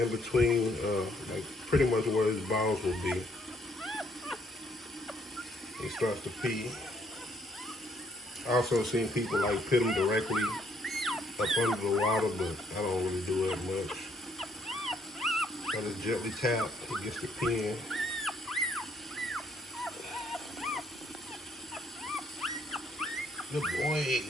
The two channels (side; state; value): both; normal; correlation 0.68